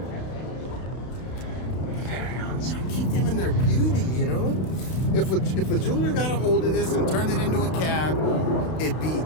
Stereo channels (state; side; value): late; right; 31 ms